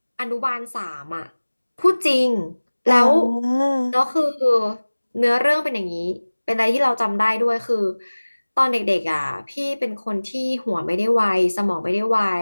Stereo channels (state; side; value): inverted; both; correlation -1.00